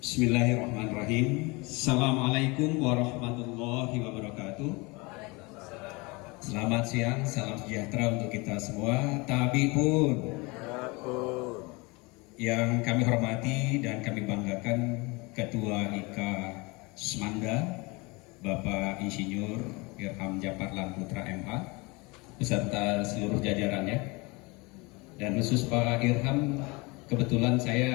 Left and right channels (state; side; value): quieter; right; 26.2 dB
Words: Bismillahirrahmanirrahim. Assalamualaikum warahmatullahi wabarakatuh. Selamat siang, salam sejahtera untuk kita semua. Tabi pun yang kami hormati dan kami banggakan Ketua IKA Semanda, Bapak Insinyur Irham Japar Putra MH, beserta seluruh jajarannya. Dan khusus Pak Irham, kebetulan